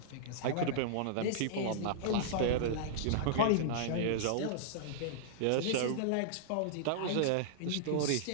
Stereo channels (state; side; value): different; both; correlation -0.02